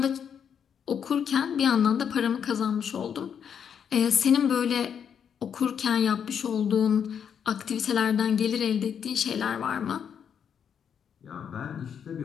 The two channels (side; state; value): right; quieter; 7.8 dB